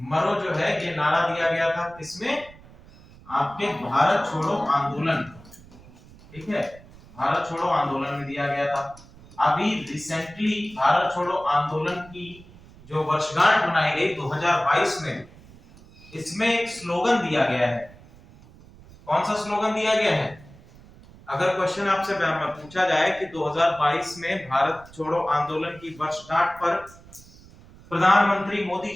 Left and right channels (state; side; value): noise; right; rumble, 22 dB below the sound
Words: मरो जो है ये नारा दिया गया था किसमें, आपके भारत छोड़ो आंदोलन, ठीक है, भारत छोड़ो आंदोलन में दिया गया था। अभी रिसेंटली भारत छोड़ो आंदोलन की जो वर्षगांठ मनाई गई 2022 में, इसमें एक स्लोगन दिया गया है। कौन सा स्लोगन दिया गया है, अगर क्वेश्चन आपसे पूछा जाए कि 2022 में भारत छोड़ो आंदोलन की वर्षगांठ पर प्रधानमंत्री मोदी